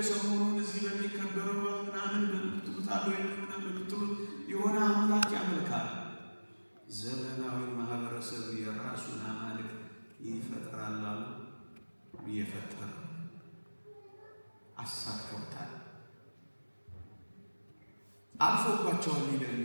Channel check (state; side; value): inverted; both; correlation -1.00